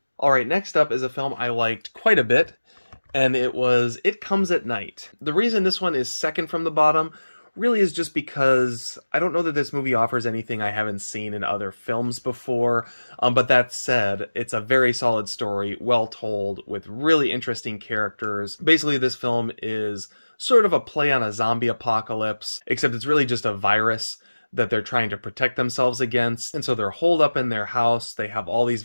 All right, next up is a film I liked quite a bit, and it was It Comes at Night. The reason this one is second from the bottom really is just because I don't know that this movie offers anything I haven't seen in other films before, but that said, it's a very solid story, well told, with really interesting characters. Basically, this film is sort of a play on a zombie apocalypse, except it's really just a virus that they're trying to protect themselves against, and so they're holed up in their house, they have all these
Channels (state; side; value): inverted; both; correlation -1.00